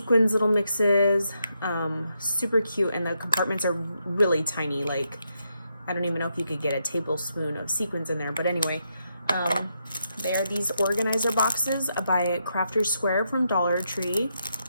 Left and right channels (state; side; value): inverted; both; correlation -0.81